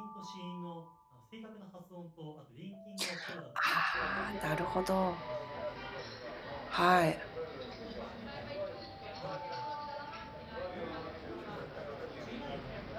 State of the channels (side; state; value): both; identical; correlation 1.00